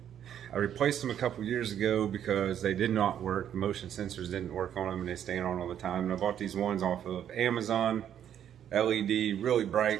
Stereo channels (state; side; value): quieter; left; 9.8 dB